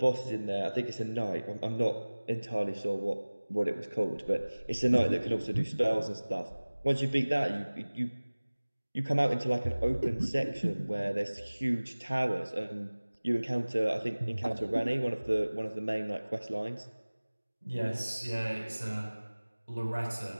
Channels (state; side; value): inverted; both; correlation -1.00